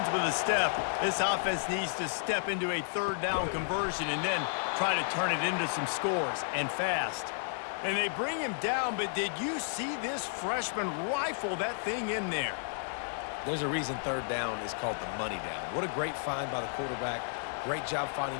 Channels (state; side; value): silent; right; 56 dB below the other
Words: with a step, this offense needs to step into a 3rd down conversion and then try to turn it into some scores, and fast. And they bring him down, but did you see this freshman rifle that thing in there? There's a reason 3rd down is called the money down. What a great find by the quarterback. Great job finding